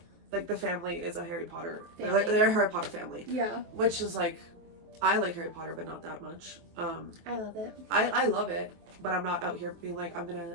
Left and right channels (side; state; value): left; late; 23 ms